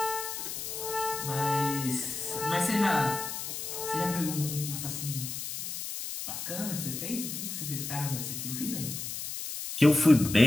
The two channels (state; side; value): noise; left; hiss, 6 dB below the sound